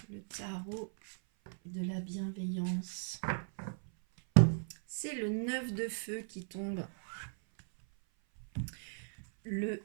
le tarot de la bienveillance? C'est le 9 de feu qui tombe. Le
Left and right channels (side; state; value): left; silent; 53 dB below the other